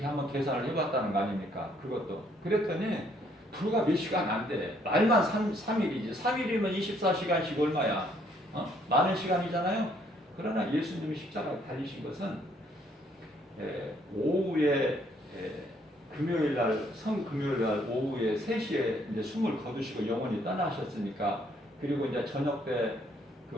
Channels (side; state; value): both; normal; correlation 0.66